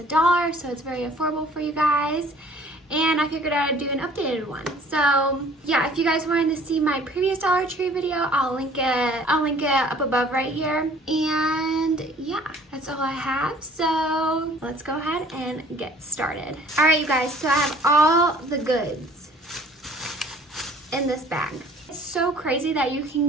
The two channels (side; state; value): both; normal; correlation 0.54